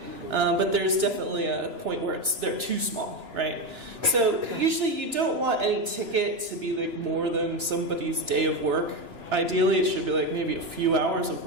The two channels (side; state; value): left; late; 2.9 ms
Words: but there's definitely a point where they're too small, right? So usually you don't want any ticket to be more than somebody's day of work. Ideally it should be maybe a few hours of